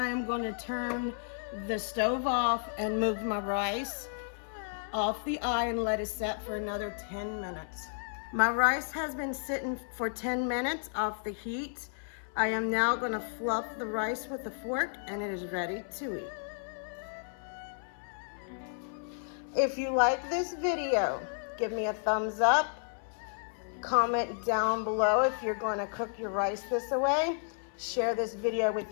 am going to turn the stove off and move my rice off the eye and let it set for another 10 minutes. My rice has been sitting for 10 minutes off the heat. I am now going to fluff the rice with a fork, and it is ready to eat. If you like this video, give me a thumbs up. Comment down below if you're going to cook your rice this way. Share this video with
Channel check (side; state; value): right; silent; 56 dB below the other